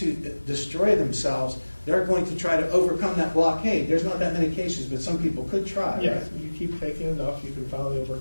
destroy themselves, they're going to try to overcome that blockade. There's not that many cases, but some people could try. Yeah, Right? you keep taking enough, you can finally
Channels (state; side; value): inverted; both; correlation -1.00